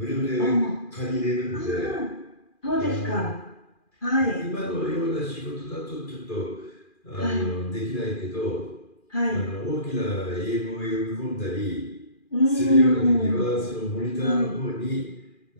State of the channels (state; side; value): late; right; 2.4 ms